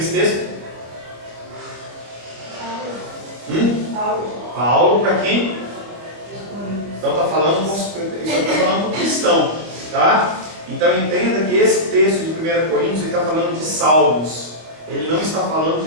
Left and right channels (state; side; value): late; left; 25 ms